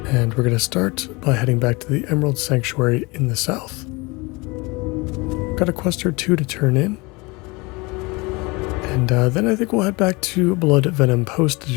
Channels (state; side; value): quieter; right; 25.7 dB